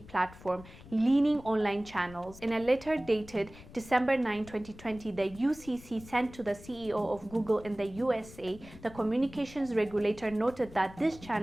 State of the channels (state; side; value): noise; left; rumble, 19 dB below the sound